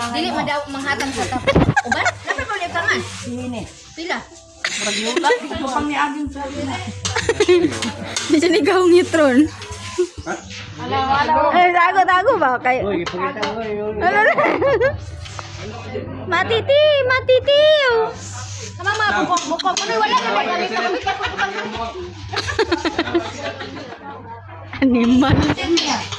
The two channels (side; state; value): both; identical; correlation 1.00